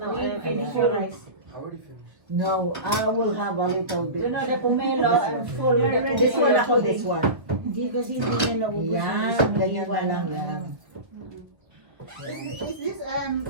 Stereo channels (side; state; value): left; late; 1.5 ms